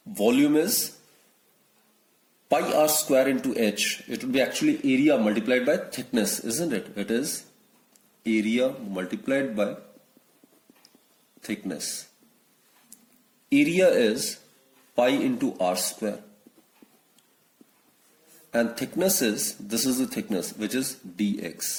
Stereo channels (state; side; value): identical; both; correlation 1.00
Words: volume is pi r square into h. It would be actually area multiplied by thickness, isn't it? It is area multiplied by thickness. Area is pi into r square, and thickness is, this is the thickness, which is